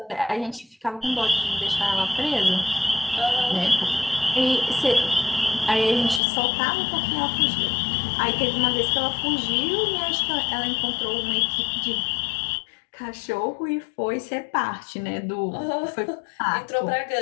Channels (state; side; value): drops out; right; at 6.2 s